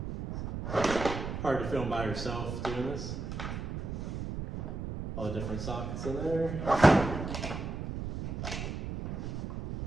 Hard to film by yourself doing this. All the different sockets in there.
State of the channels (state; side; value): noise; right; rumble, 5 dB below the sound